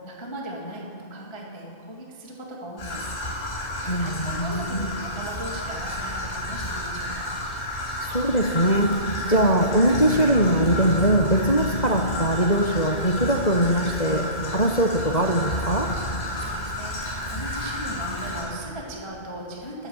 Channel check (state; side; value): late; right; 2.0 ms